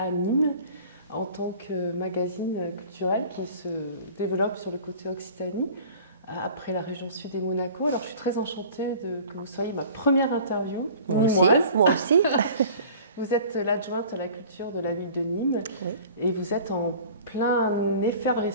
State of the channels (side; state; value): both; inverted; correlation -0.45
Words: Nîmes, en tant que magazine culturel qui se développe sur le côté Occitanie, après la région sud et Monaco. Alors, je suis très enchantée que vous soyez ma première interview. Moi aussi. Moi aussi. Vous êtes l'adjointe à la culture de la ville de Nîmes, oui. Et vous êtes en pleine